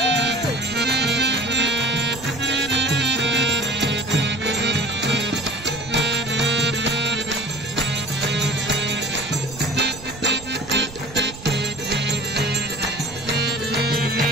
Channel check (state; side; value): noise; right; rumble, 17 dB below the sound